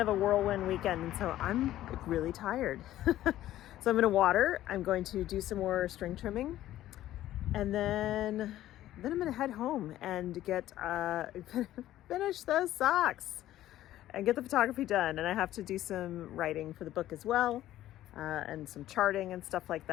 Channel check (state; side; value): quieter; right; 13.7 dB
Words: of a whirlwind weekend. And so I'm really tired. So I'm gonna water, I'm going to do some more string trimming, and then I'm gonna head home and get finish those socks and get the photography done. And I have to do some writing for the book as well, and some charting and stuff like